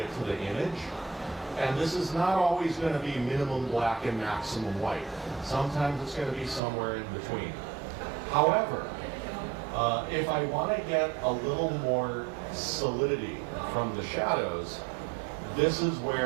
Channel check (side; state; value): left; drops out; at 6.6 s